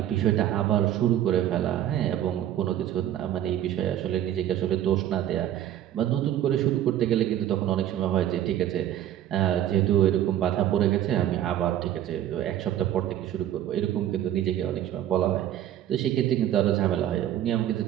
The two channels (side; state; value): left; quieter; 11.6 dB